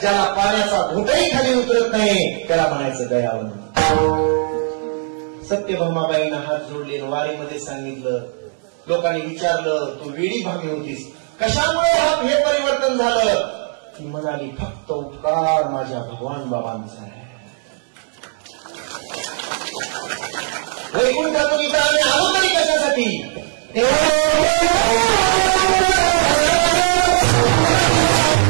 पाण्याचा घोटही खाली उतरत नाही त्याला म्हणायचं दयावंत. सत्यभामाबाईंना हात जोडले. वारीमध्ये सांगितलं. लोकांनी विचारलं, तू वेडी भामी होतीस, कशामुळे हे परिवर्तन झालं? ती म्हणाली, फक्त उपकार माझ्या भगवान बाबांचा आहे. वैकुंठातून इथं आम्ही आलो तरी कशासाठी?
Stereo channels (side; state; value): left; silent; 56 dB below the other